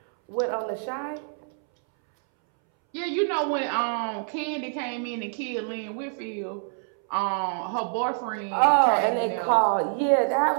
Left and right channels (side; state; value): left; silent; 61 dB below the other